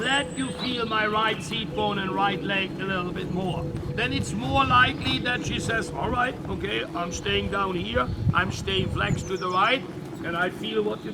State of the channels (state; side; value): identical; both; correlation 1.00